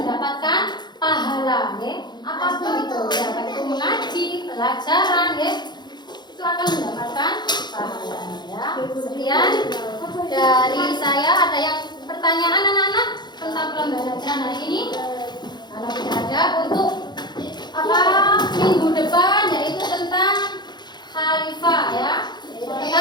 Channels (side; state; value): right; late; 0.21 ms